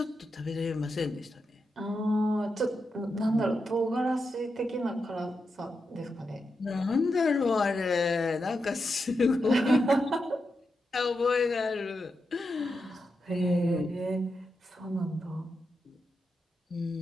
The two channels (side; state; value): both; normal; correlation 0.87